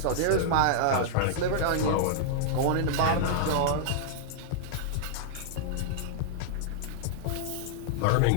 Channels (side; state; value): both; different; correlation -0.02